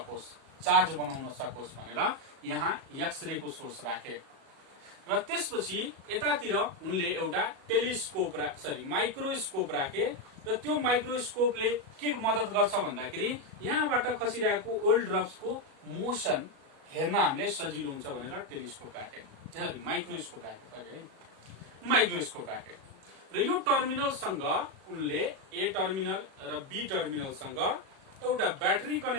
चार्ज बनाउन सकोस् भनेर यहाँ एक्सरे को सोर्स राखे। र त्यसपछि यतातिर उनले एउटा टेलिस्कोप माइक्रोस्कोप राखे र त्यो माइक्रोस्कोपले के मद्दत गर्छ भन्दाखेरि यहाँबाट खसिरहेको ओल्ड ड्रप्सको मोसन हेर्न हामीले सजिलो हुन्छ भनेर टेलिस्कोप राखे, माइक्रोस्कोप राखे। र यो टर्मिनलसँग उनले ए टर्मिनल र बी टर्मिनलसँग एउटा ब्याट्री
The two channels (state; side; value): late; left; 37 ms